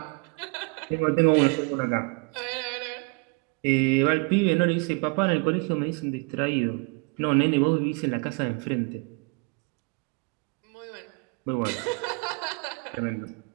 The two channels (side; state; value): left; quieter; 31.6 dB